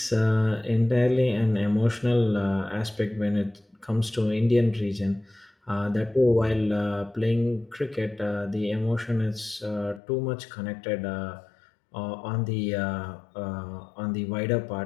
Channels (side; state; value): right; drops out; at 10.0 s